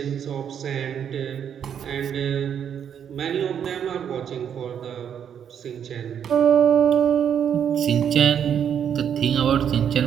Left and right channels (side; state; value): left; quieter; 8.5 dB